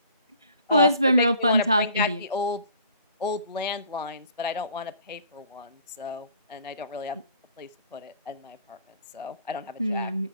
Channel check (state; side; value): inverted; both; correlation -0.53